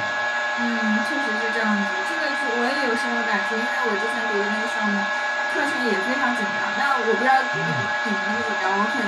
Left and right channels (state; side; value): identical; both; correlation 1.00